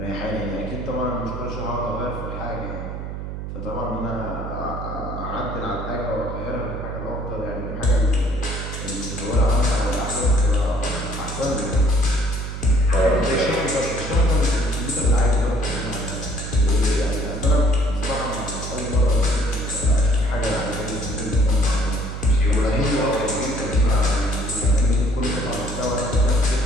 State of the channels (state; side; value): noise; right; hum, 7 dB below the sound